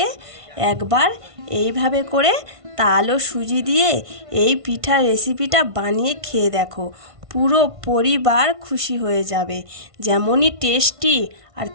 একবার এইভাবে করে তাল ও সুজি দিয়ে এই পিঠার রেসিপিটা বানিয়ে খেয়ে দেখো। পুরো পরিবার খুশি হয়ে যাবে। যেমনই টেস্টি আর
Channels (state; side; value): late; left; 1.5 ms